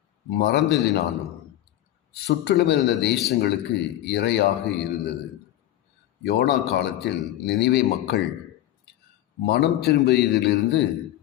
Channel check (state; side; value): quieter; right; 13.5 dB